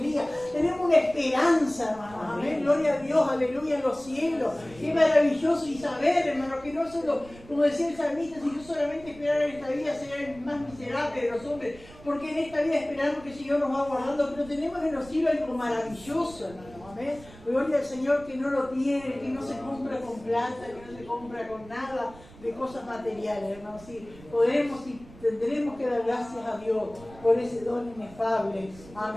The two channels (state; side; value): noise; right; rumble, 20 dB below the sound